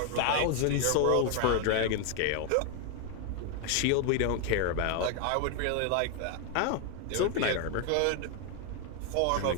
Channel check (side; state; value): both; different; correlation 0.01